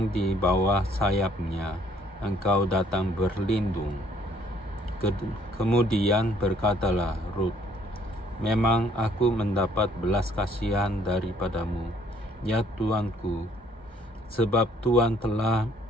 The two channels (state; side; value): normal; both; correlation 0.62